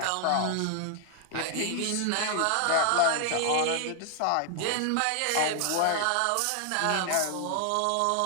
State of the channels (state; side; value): different; both; correlation 0.00